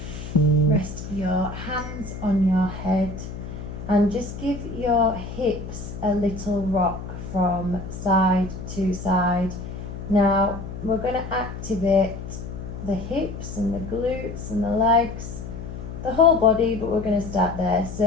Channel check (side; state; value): left; noise; hum, 9 dB below the sound